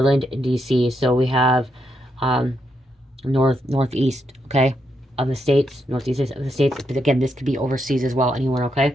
and DC. So we have um, northeast, okay, of the states, northeast of the states. But again, this could be overseas as well, anywhere, okay?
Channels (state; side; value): normal; both; correlation 0.80